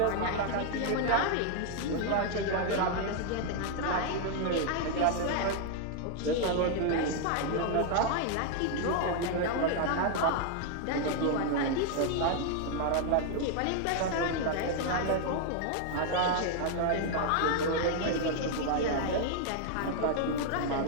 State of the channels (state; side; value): different; both; correlation 0.00